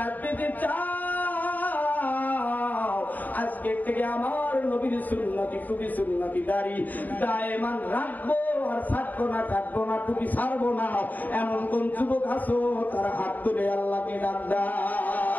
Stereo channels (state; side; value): late; right; 0.083 ms